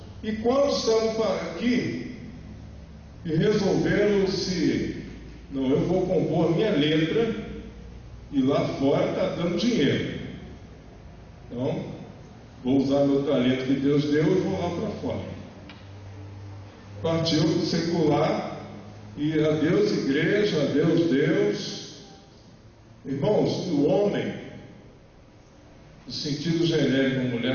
E quantos estavam aqui e resolveram não, eu vou compor a minha letra e lá fora está dando dinheiro. Então, vou usar meu talento que Deus deu e vou lá para fora. Partiu do secular e adeus igreja, adeus Deus. Irmãos, o homem, no sentido genérico, a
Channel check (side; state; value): both; identical; correlation 1.00